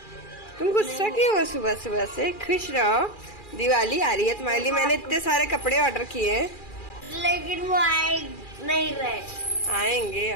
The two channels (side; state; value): right; late; 2.4 ms